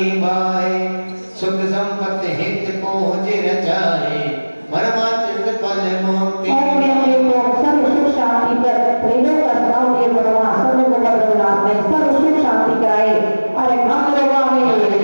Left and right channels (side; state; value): both; inverted; correlation -1.00